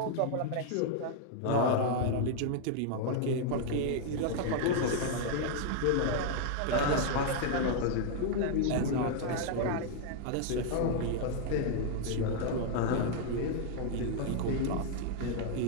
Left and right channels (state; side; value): different; both; correlation 0.00